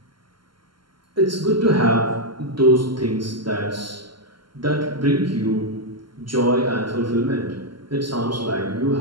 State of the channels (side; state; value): left; late; 0.72 ms